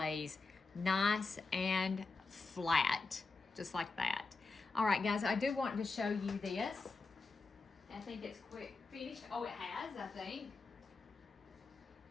nice and flat, just like that. All right, guys, I do want to show you this. I think it's quick finished. Oh, it has, I think.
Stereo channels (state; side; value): quieter; right; 3.9 dB